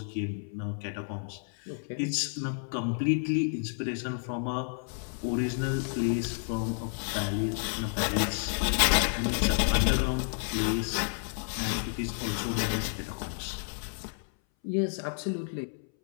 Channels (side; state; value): right; silent; 57 dB below the other